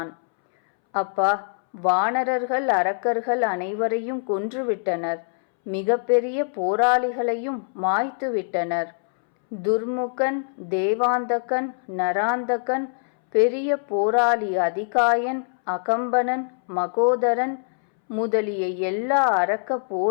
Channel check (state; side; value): silent; right; 63 dB below the other